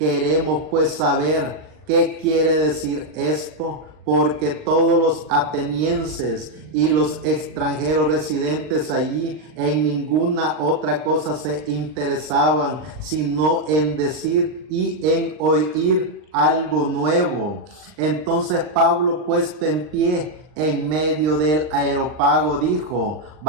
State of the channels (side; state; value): left; late; 39 ms